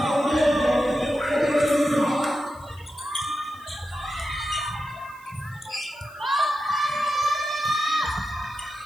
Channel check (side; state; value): right; noise; hiss, 27 dB below the sound